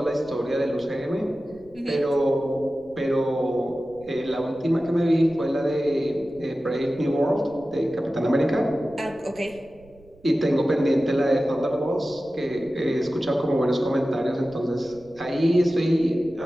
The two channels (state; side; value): noise; right; rumble, 26 dB below the sound